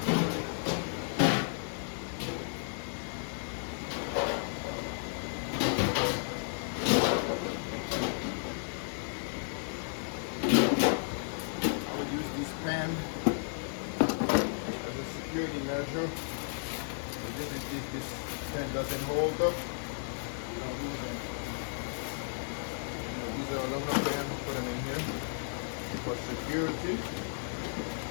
pan as a security measure. If this pan doesn't hold up, we don't use them. These are aluminum pans, put them in here for security.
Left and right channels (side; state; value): right; silent; digital silence